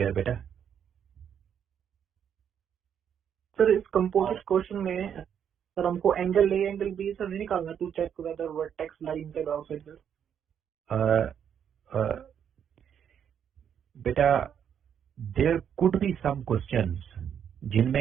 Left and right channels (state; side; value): quieter; left; 8.5 dB